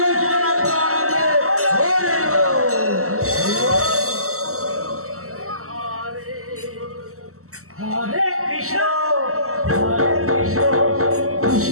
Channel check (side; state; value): left; late; 0.63 ms